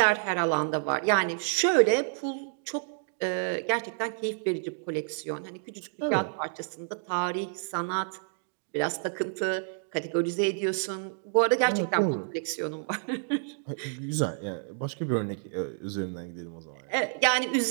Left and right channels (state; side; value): silent; left; digital silence